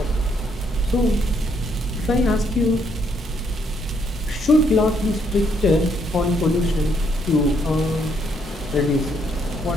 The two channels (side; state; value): both; normal; correlation 0.72